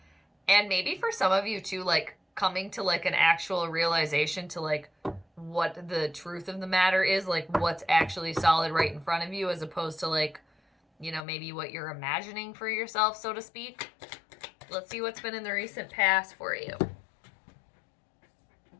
and maybe for some of you too, like coming to like an actual realization to like what the truth of the matter is, like what's actually solid right in front of you, as opposed to like, you know, maybe what you're imagining for yourself, so to speak. Let's see what's been in the recent past for you.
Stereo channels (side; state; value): right; drops out; at 11.2 s